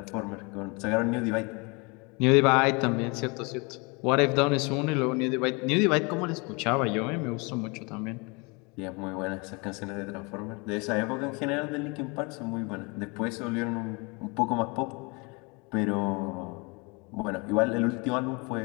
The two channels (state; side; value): quieter; right; 29.5 dB